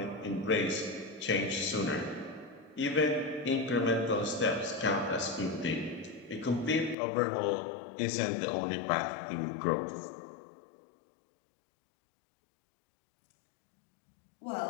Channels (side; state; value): right; drops out; at 7.0 s